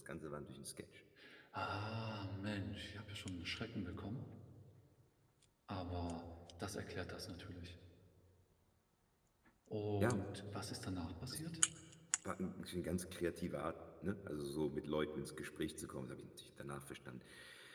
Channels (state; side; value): identical; both; correlation 1.00